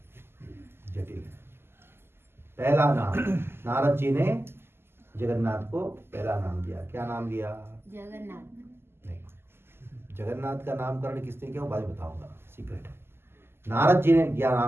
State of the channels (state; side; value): late; left; 0.12 ms